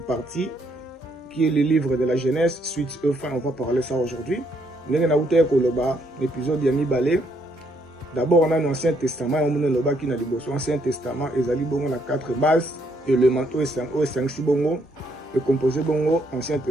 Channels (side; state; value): both; normal; correlation 0.72